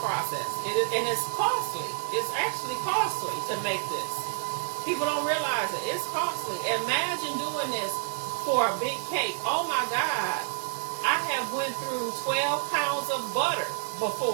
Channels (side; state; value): left; silent; 56 dB below the other